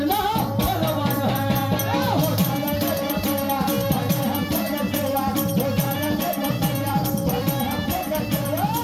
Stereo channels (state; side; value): identical; both; correlation 1.00